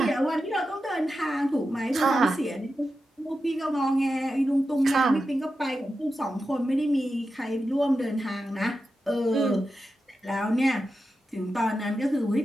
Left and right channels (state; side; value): normal; both; correlation 0.90